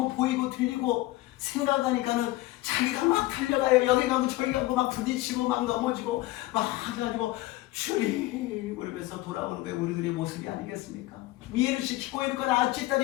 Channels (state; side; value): quieter; right; 18.2 dB